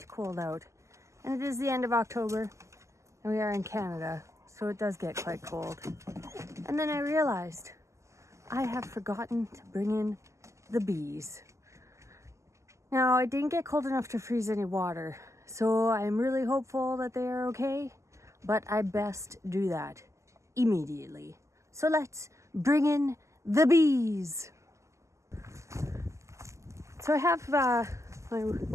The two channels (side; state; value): left; late; 0.14 ms